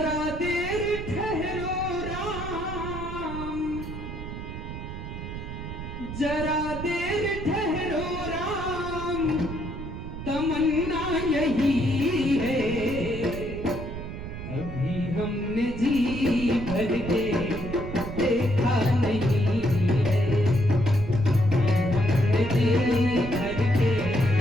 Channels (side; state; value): right; noise; rumble, 8 dB below the sound